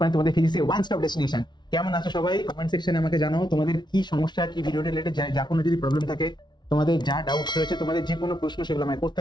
তোমাদের ফিজিক্সের one stop destination. কেমন আছো সবাই? কমেন্ট সেকশনে আমাকে জানাও তোমাদের কি সমস্যা, কি ভিডিও রিলেটেড যা কোনো যদি প্রবলেম থাকে, তোমাদের যা ডাউটস রয়েছে, তোমাদের যে কোনো প্রশ্ন সেগুলো আমায় করতে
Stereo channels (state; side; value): late; right; 0.21 ms